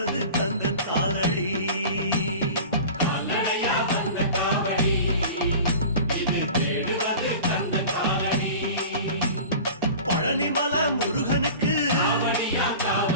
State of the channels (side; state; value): both; inverted; correlation -0.38